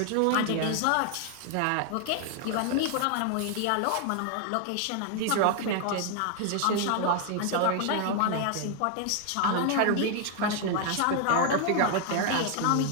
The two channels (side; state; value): both; different; correlation 0.00